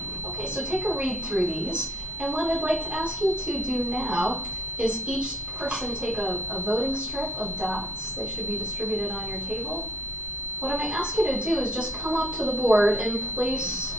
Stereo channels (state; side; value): normal; both; correlation 0.59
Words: Okay, so take a read through these. And what I'd like to ask you to do now is each person take a voting strip of dots. They should be distributed on your table. What I might ask you to do is just come up to the board and place